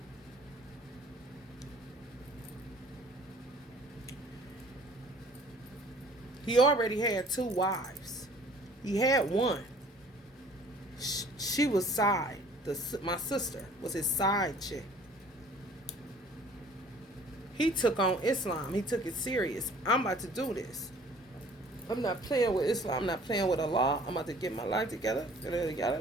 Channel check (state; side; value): normal; both; correlation 0.52